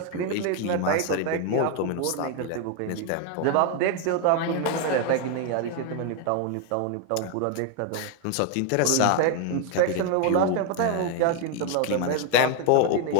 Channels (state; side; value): different; both; correlation 0.01